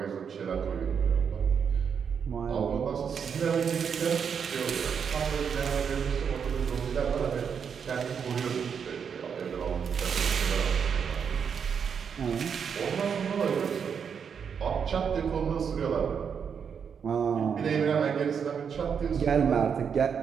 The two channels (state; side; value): quieter; left; 6.9 dB